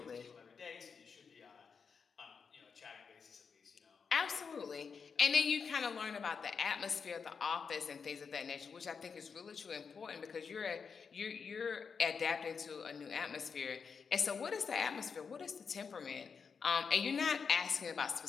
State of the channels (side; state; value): right; quieter; 5.8 dB